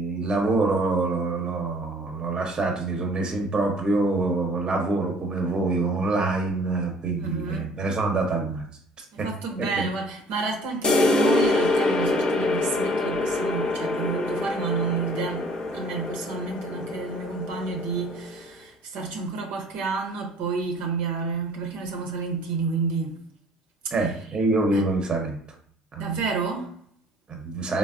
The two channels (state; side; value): normal; both; correlation 0.53